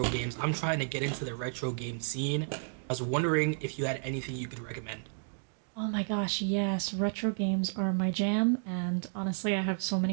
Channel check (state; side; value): silent; left; digital silence